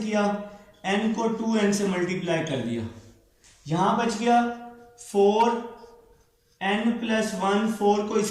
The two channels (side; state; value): both; identical; correlation 1.00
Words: n को 2n से मल्टीप्लाई कर दिया। यहां बच गया 4 n प्लस 1, 4 को